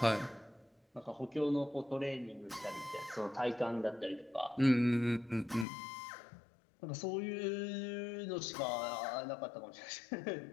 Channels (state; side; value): drops out; right; at 5.7 s